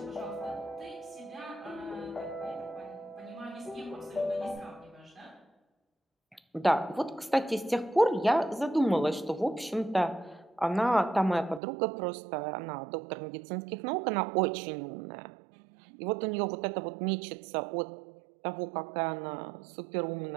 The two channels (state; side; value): drops out; left; at 11.6 s